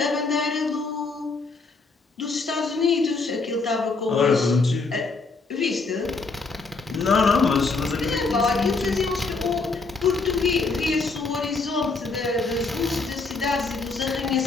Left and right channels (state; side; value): quieter; right; 4.0 dB